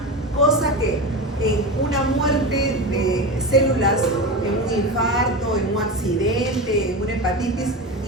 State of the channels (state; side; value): normal; both; correlation 0.23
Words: cosa que en una muerte de células, en un infarto, en un accidente, en una hepatitis,